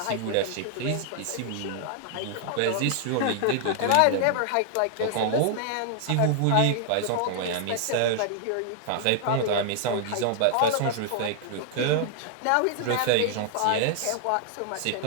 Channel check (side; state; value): both; different; correlation 0.00